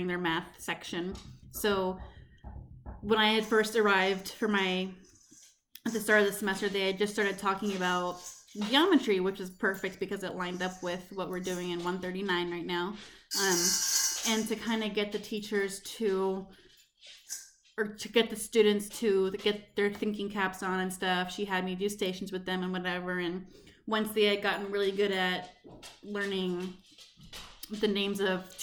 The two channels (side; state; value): both; identical; correlation 1.00